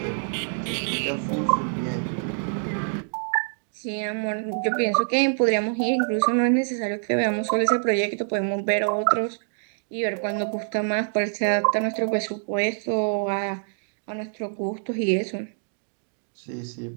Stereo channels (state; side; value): silent; left; digital silence